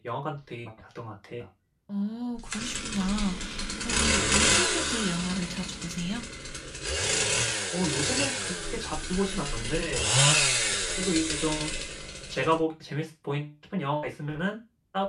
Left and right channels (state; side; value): identical; both; correlation 1.00